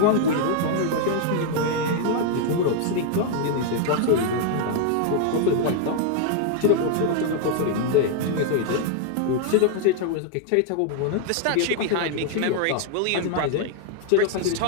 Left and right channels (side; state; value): both; different; correlation 0.00